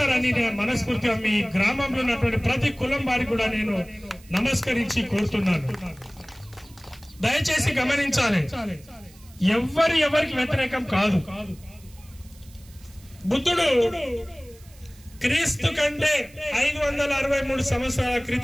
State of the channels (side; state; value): right; noise; hiss, 25 dB below the sound